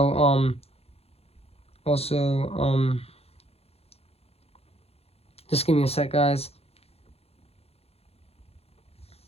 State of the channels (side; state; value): right; late; 0.29 ms